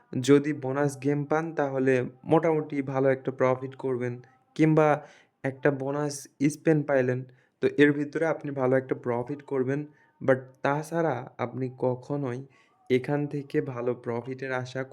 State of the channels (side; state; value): both; identical; correlation 1.00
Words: যদি বোনাস গেম পান তাহলে মোটামুটি ভালো একটা প্রফিট করবেন কিংবা একটা বোনাস স্পেন পাইলেন। তো এর ভিতরে আপনি ভালো একটা প্রফিট করবেন। বাট তাছাড়া আপনি কখনোই এখান থেকে ভালো প্রফিটের আশা